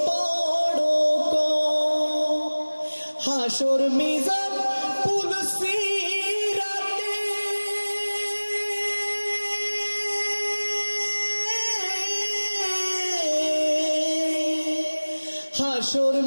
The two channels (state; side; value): inverted; both; correlation -1.00